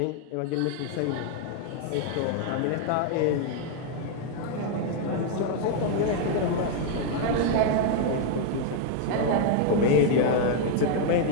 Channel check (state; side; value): different; both; correlation 0.00